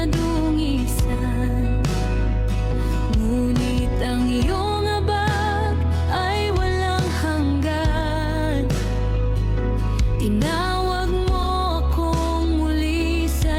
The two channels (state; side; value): identical; both; correlation 1.00